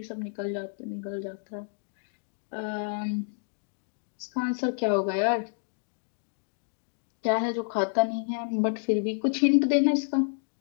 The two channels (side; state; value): right; silent; digital silence